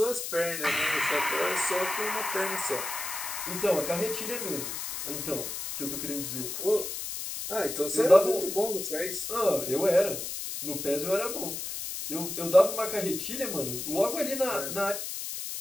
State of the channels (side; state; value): left; noise; hiss, 5 dB below the sound